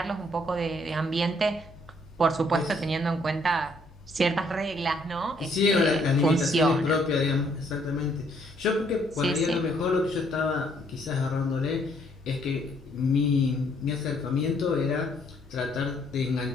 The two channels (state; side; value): normal; both; correlation 0.67